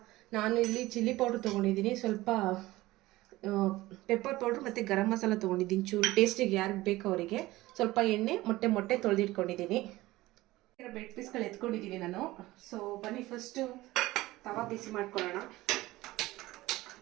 ನಾನು ಇಲ್ಲಿ ಚಿಲ್ಲಿ ಪೌಡ್ರ್ ತೊಗೊಂಡಿದ್ದೀನಿ, ಸ್ವಲ್ಪ ಪೆಪ್ಪರ್ ಪೌಡ್ರ್ ಮತ್ತು ಗರಂ ಮಸಾಲ ತೊಗೊಂಡಿದ್ದೀನಿ. ಚೂರು ಟೇಸ್ಟಿಗೆ ಯಾರಿಗೆ ಬೇಕೋ ಅವರಿಗೆ. ಸ್ವಲ್ಪ ಎಣ್ಣೆ, ಮೊಟ್ಟೆ ತೊಳೆದಿಟ್ಕೊಂಡಿದ್ದೀನಿ. ಬ್ರೆಡ್ ಪೀಸ್ಗಳು ಎತ್ಕೊಂಡಿದ್ದೀನಿ ನಾನು. ಬನ್ನಿ ಫಸ್ಟು ತವಾ ಬಿಸಿ ಮಾಡ್ಕೊಳ್ಳೋಣ.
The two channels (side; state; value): left; quieter; 18.2 dB